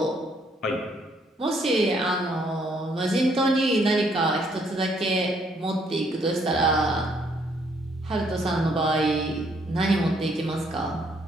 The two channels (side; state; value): both; normal; correlation 0.69